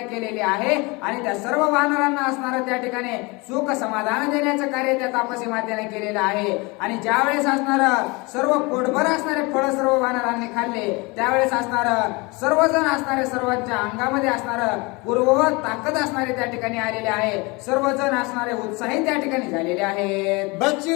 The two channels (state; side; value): quieter; right; 26.3 dB